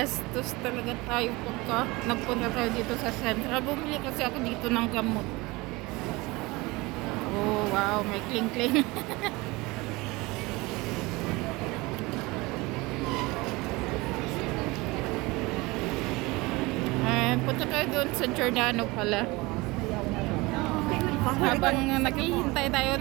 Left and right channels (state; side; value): quieter; left; 23.0 dB